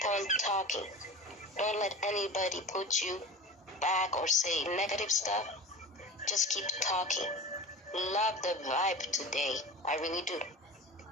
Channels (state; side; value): normal; both; correlation 0.32